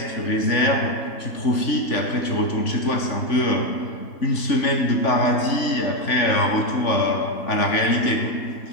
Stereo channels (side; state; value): right; late; 3.5 ms